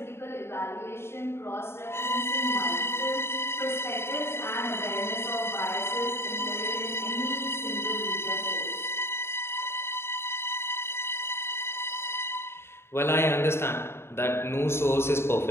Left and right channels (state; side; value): late; right; 0.12 ms